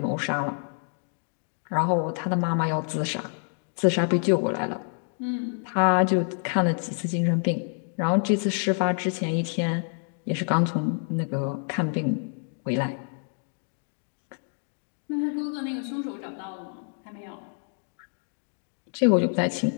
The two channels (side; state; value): right; silent; 57 dB below the other